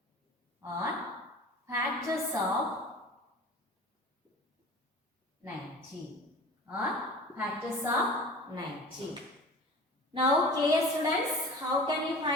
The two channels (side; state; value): both; normal; correlation 0.40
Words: 90 or factors of 90. Now clear students, how can we